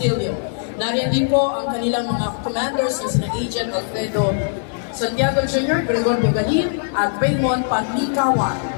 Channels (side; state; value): right; silent; 56 dB below the other